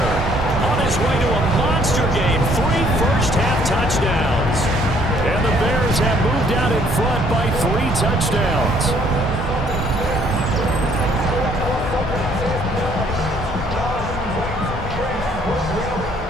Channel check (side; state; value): both; normal; correlation 0.63